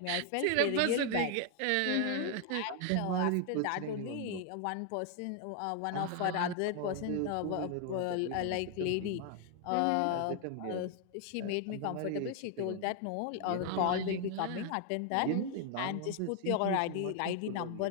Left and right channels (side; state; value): both; different; correlation 0.00